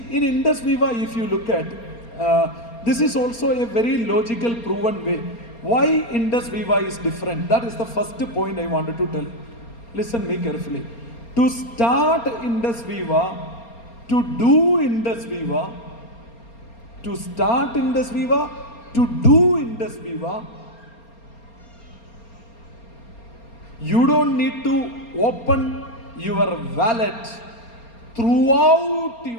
in Indus Viva, if you look at, this is also a very logical, proven way. Why Indus Viva is different? That is the first point I wanted to tell. Listen me carefully. To start Indus Viva, to do Indus Viva, to start Indus Viva, to do Indus Viva, you don't need to open your wallet throughout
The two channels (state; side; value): late; right; 4.3 ms